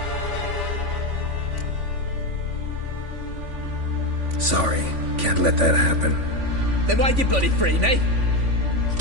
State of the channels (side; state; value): left; late; 3.5 ms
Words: Sorry, can't let that happen. Then why'd you bloody free me?